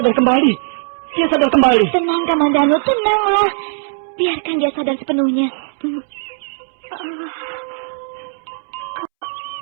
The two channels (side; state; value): left; silent; 67 dB below the other